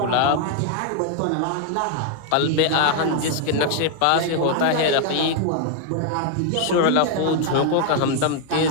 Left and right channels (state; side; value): different; both; correlation 0.00